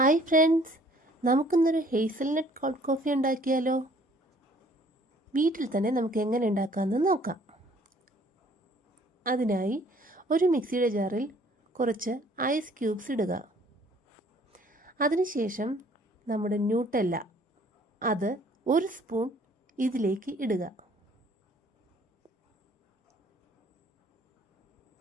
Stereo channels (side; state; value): both; normal; correlation 0.58